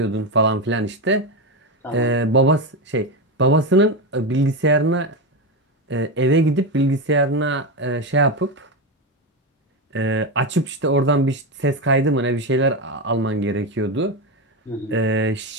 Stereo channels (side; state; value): both; normal; correlation 0.14